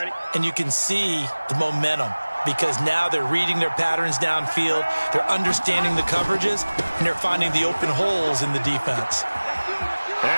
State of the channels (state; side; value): inverted; both; correlation -1.00